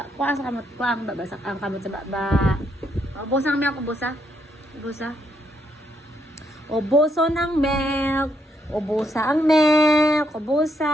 Kuha sa kamot. Kuha ang babasak. Ang kamot sa baba. Ubusan ang milk. Ubusa. Ubuso ng milk. Ubusa ang milk.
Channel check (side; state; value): both; normal; correlation 0.76